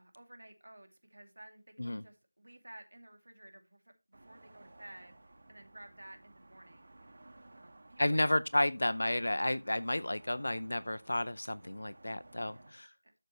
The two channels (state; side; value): inverted; both; correlation -1.00